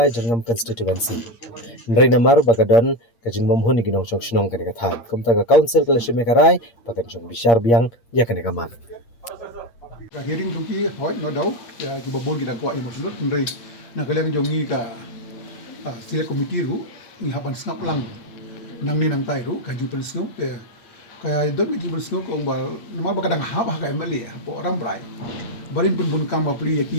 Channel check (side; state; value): right; late; 8.6 ms